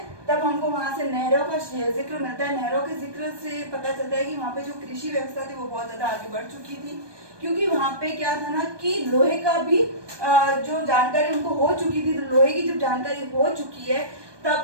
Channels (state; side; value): late; left; 1.2 ms